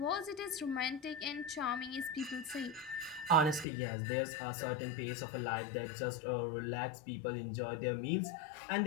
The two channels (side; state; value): right; drops out; at 3.7 s